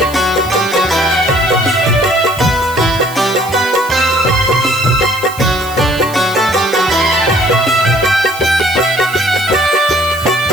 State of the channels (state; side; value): noise; right; hiss, 16 dB below the sound